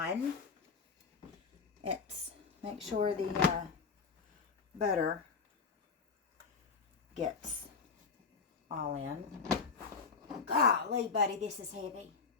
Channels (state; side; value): quieter; right; 5.2 dB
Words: It's make sure the butter gets all in. Golly, buddy, this is heavy.